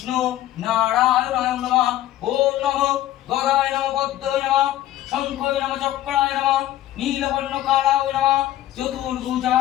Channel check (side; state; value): right; quieter; 13.8 dB